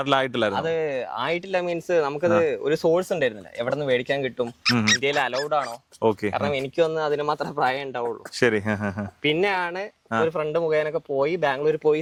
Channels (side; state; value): both; identical; correlation 1.00